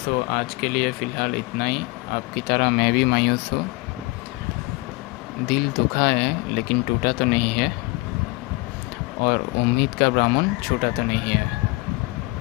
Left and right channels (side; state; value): right; quieter; 23.7 dB